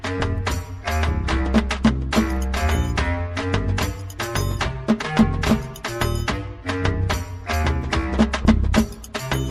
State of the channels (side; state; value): both; identical; correlation 1.00